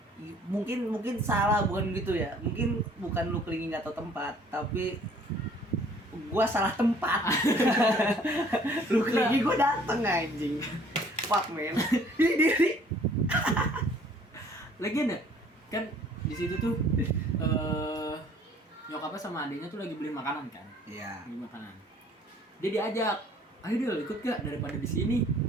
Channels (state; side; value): normal; both; correlation 0.56